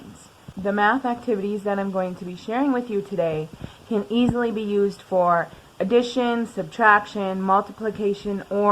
The math activities that I'm going to be sharing with you today can easily be used for addition, subtraction, multiplication,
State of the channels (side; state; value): both; identical; correlation 1.00